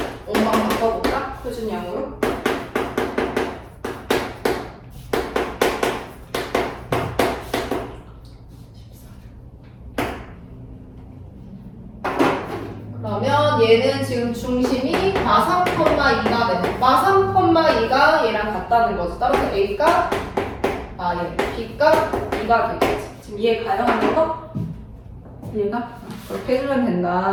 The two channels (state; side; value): identical; both; correlation 1.00